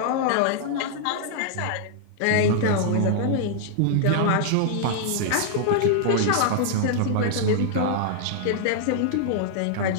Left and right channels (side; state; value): both; different; correlation -0.01